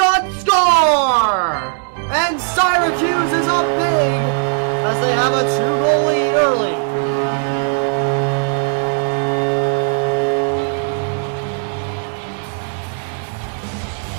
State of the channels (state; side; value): silent; left; 68 dB below the other